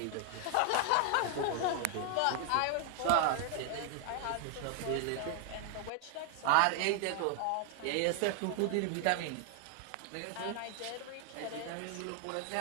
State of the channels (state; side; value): different; both; correlation 0.00